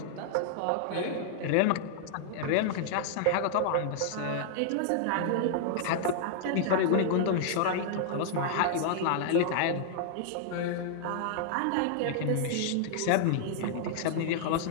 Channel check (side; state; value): both; different; correlation -0.01